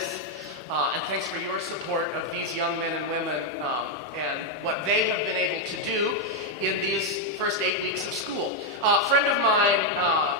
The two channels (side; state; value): both; normal; correlation 0.01